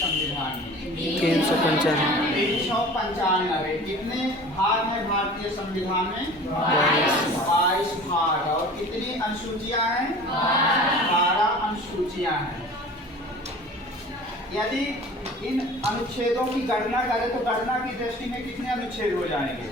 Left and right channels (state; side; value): normal; both; correlation 0.42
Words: में? 395। कितने भाग हैं भारतीय संविधान में? 22 भाग। और कितनी अनुसूचियां हैं? 12 अनुसूचियां हैं। यदि इन अनुच्छेदों की गणना करें तो गणना की दृष्टि में कितने अनुच्छेद हो जाएंगे?